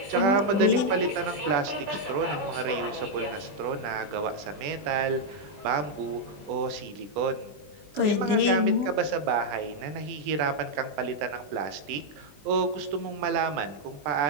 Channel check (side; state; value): left; late; 20 ms